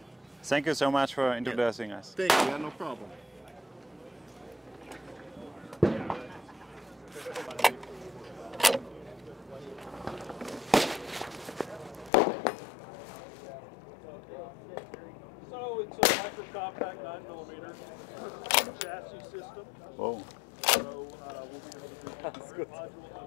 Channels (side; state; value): right; drops out; at 12.1 s